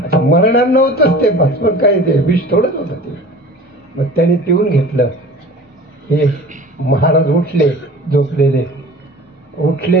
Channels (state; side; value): normal; both; correlation 0.41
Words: मरणार नव्हतंच ते, बस पण काय ते विष थोडंच होतं ते. मग त्याने पिऊन घेतलं. हे महाराज उठले, झोपलेले